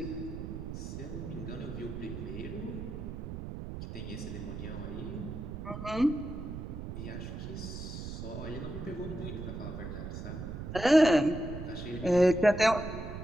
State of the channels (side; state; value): right; noise; rumble, 7 dB below the sound